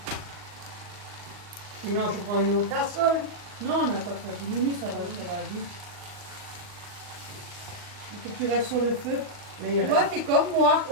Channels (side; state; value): left; late; 39 ms